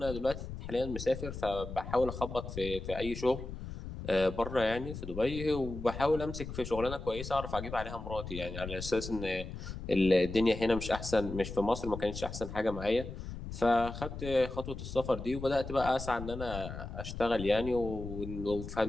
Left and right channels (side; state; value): left; noise; rumble, 9 dB below the sound